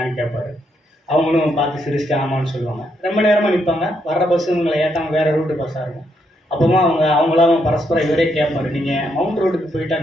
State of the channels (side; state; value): both; normal; correlation 0.77